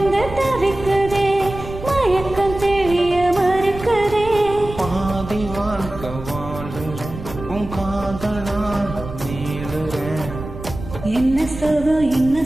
தவிக்குதே மயக்கம் தெளிய மறுக்குதே பாதி வாழ்க்கை வாழுற உன் காதலால் நீளுற என்ன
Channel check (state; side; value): noise; right; rumble, 11 dB below the sound